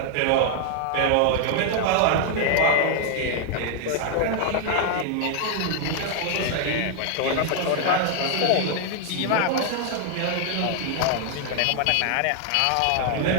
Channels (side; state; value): both; different; correlation 0.00